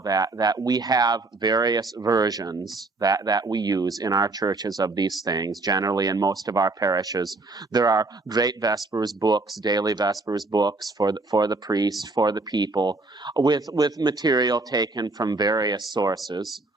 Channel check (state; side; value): quieter; left; 3.3 dB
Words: we have various versions that we use in our churches of these things. Generally, in most of our parishes, there are great Vespers books, daily Vespers books for the priest, for the people, with material taken from various sources